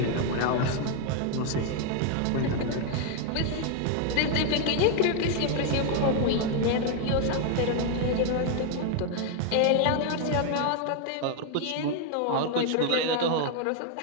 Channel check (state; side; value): different; both; correlation 0.00